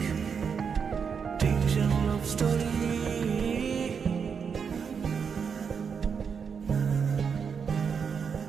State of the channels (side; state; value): left; quieter; 6.4 dB